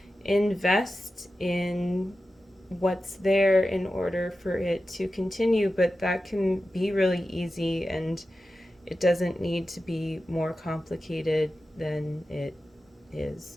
invest in what's there in order for it to continue. But that can be really easy, and it doesn't need to be more complicated than it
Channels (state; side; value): normal; both; correlation 0.93